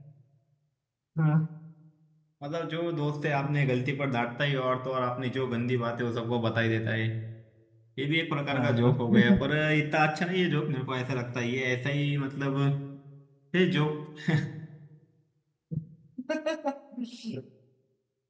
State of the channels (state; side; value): identical; both; correlation 1.00